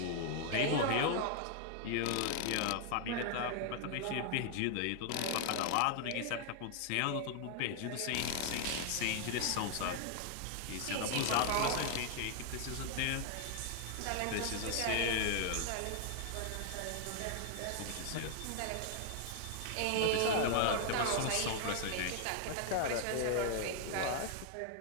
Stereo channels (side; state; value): both; different; correlation 0.00